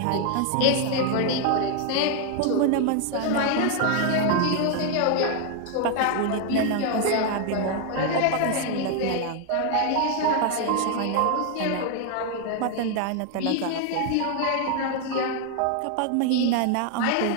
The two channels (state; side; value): different; both; correlation 0.00